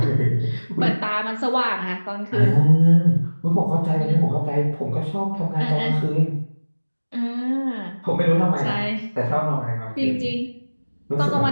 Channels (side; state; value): both; inverted; correlation -1.00